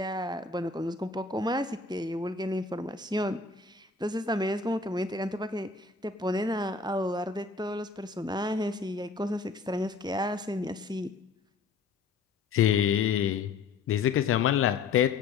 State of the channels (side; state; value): right; quieter; 4.6 dB